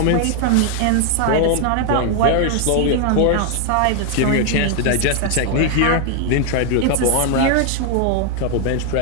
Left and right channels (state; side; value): different; both; correlation 0.00